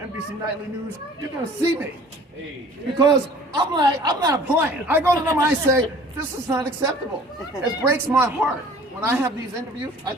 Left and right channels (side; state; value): both; normal; correlation 0.49